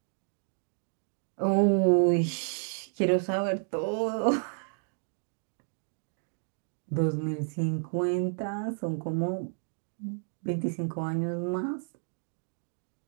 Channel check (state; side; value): silent; left; 57 dB below the other